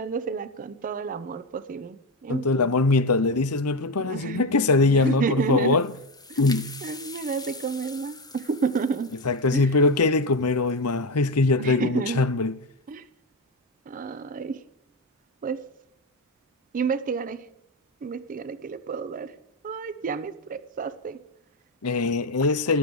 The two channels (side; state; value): both; normal; correlation 0.14